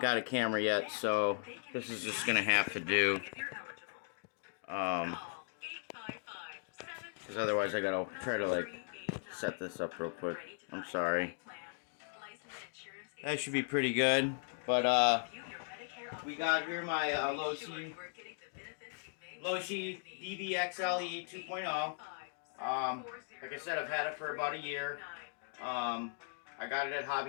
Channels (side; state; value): right; silent; digital silence